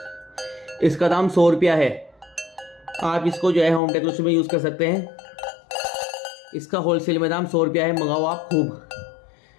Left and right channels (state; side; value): drops out; right; at 3.8 s